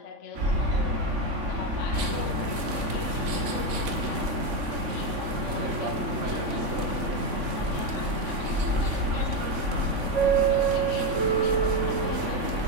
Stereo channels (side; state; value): left; late; 3.5 ms